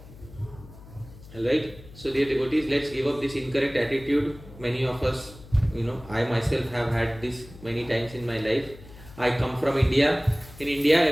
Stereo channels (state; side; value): noise; left; hum, 19 dB below the sound